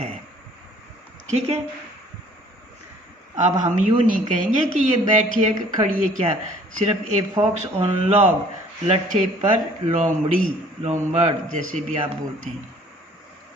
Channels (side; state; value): both; normal; correlation 0.55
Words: ठीक है, अब हम यूँ नहीं कहेंगे कि ये बैठी है कि खड़ी है, क्या, सिर्फ ए फॉक्स ऑन लॉग, लट्ठे पर लोमड़ी, लोमबर्ड जैसे भी आप बोलते हैं।